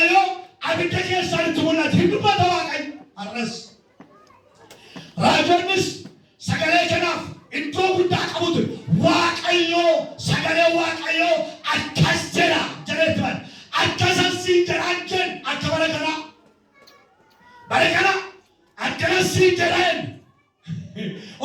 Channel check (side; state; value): both; identical; correlation 1.00